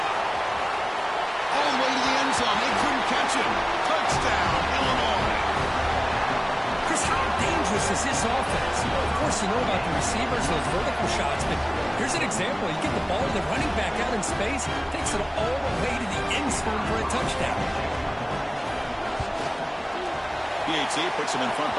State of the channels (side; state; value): both; identical; correlation 1.00